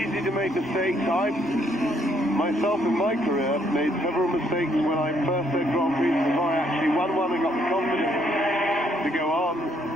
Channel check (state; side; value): normal; both; correlation 0.70